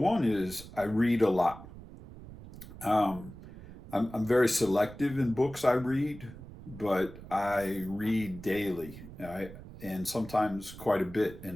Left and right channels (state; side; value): noise; right; rumble, 15 dB below the sound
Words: is I read a lot. Um, I'm very selective in books I read, but I read daily and sometimes quite a bit in